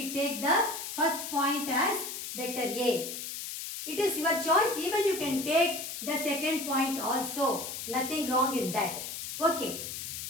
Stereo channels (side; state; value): left; noise; hiss, 7 dB below the sound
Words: take the first point as vector A. It is your choice. Even you can take the second point also. Nothing wrong in that. Okay.